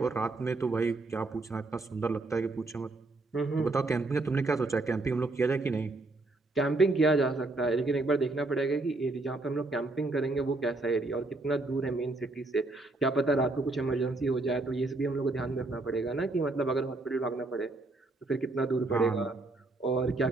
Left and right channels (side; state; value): left; quieter; 3.1 dB